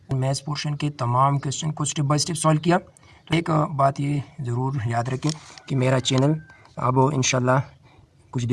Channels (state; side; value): identical; both; correlation 1.00